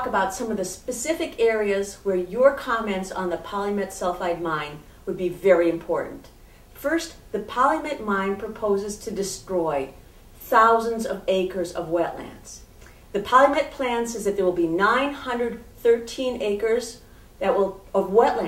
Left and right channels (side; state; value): both; identical; correlation 1.00